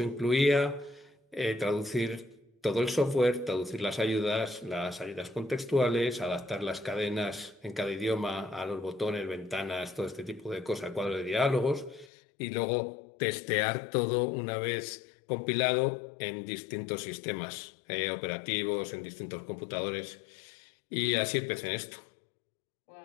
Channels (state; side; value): drops out; right; at 12.1 s